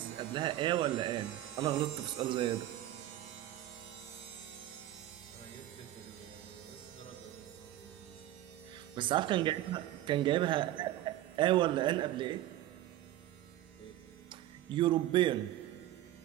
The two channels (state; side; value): quieter; left; 13.9 dB